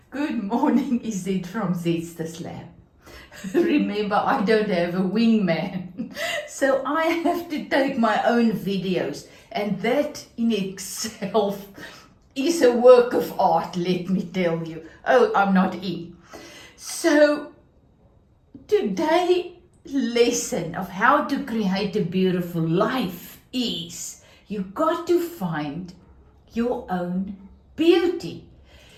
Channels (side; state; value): both; identical; correlation 1.00